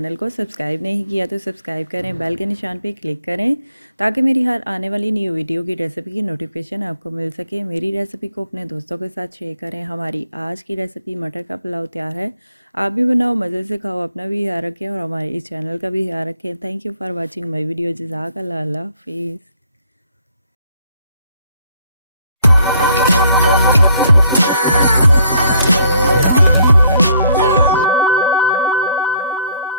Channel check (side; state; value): both; inverted; correlation -0.66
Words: को सब्सक्राइब नहीं किया तो सब्सक्राइब करें, बेल के निशान पे क्लिक करें ताकि मेरी हर आने वाली न्यू वीडियो की रेसिपी की नोटिफिकेशन आपको मिल सके। मेरी रेसिपी को अपने दोस्तों के साथ शेयर करें। हमारी आज की रेसिपी मटर का पुलाव तैयार है। आप भी बनाओ, मज़े से खाओ, अपना भी ख्याल रखें और हमारे इस चैनल का भी ख्याल रखें। Thank you for watching my video. जज़ाकल्लाह, अल्लाह हाफिज़।